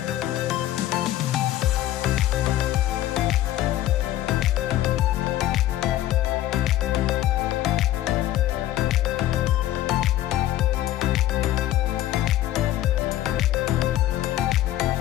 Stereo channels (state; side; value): quieter; right; 13.8 dB